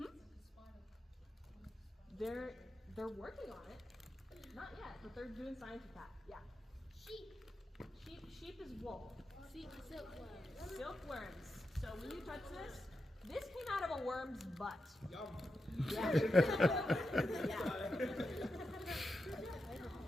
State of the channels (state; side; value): normal; both; correlation 0.88